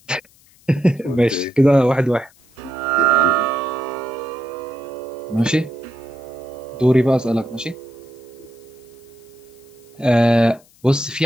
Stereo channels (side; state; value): left; noise; hiss, 29 dB below the sound